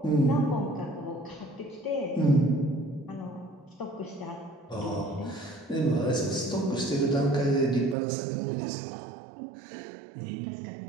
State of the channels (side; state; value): left; drops out; at 8.0 s